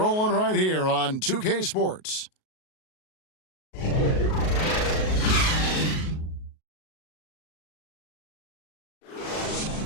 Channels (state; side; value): late; right; 38 ms